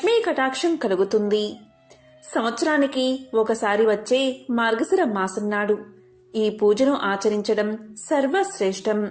కటాక్షం కలుగుతుంది. సంవత్సరానికి ఒకసారి వచ్చే మార్గశిర మాసం నాడు ఈ పూజను ఆచరించడం సర్వశ్రేష్టం.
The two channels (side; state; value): both; identical; correlation 1.00